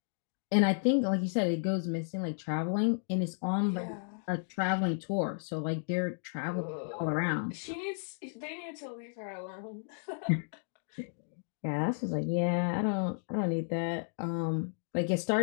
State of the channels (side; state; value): right; silent; digital silence